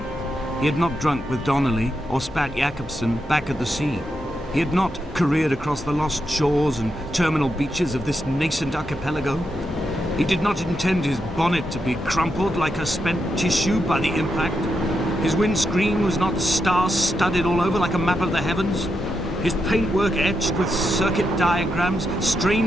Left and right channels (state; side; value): normal; both; correlation 0.84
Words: He had not drunk with Donnelly or spat Jacobson back at the sea. He had not careered across the lost shores and terminal beaches of this nascent archipelago. He did not intend his bonnet to be crumpled like a spent tissue by the impact. His windscreen was not star-studded all over like a map of the heavens. His paintwork etched with circuit diagrams,